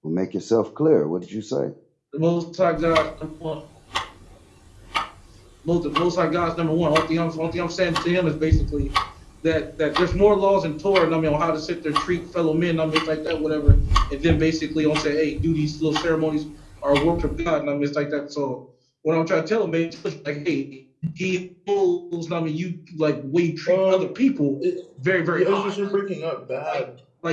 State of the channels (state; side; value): identical; both; correlation 1.00